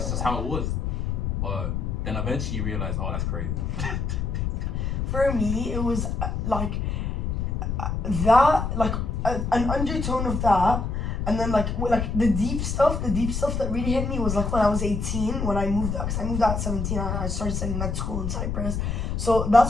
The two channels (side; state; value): left; noise; rumble, 1 dB below the sound